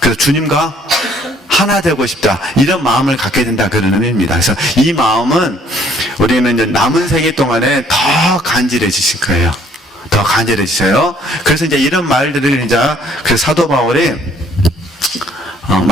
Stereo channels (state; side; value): normal; both; correlation 0.61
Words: 주님과 하나 되고 싶다. 이런 마음을 갖게 된다. 그런 의미입니다. 그래서 이 마음은 우리는 이제 남은 생애 동안에 더 간절해지실 거예요. 더 간절해지셔요. 그래서 이제 이런 말들을 이제 그 사도 바울이